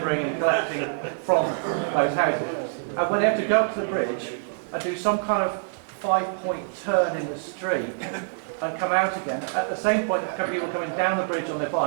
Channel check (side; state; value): left; silent; digital silence